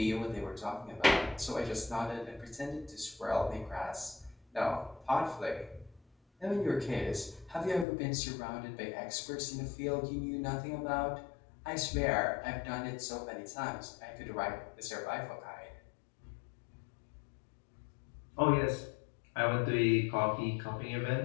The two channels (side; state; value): right; drops out; at 7.9 s